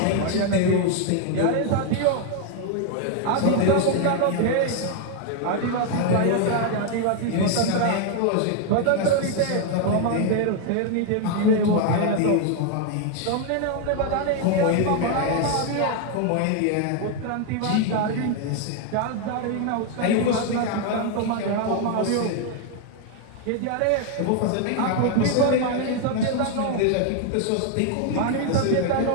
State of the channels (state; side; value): different; both; correlation 0.01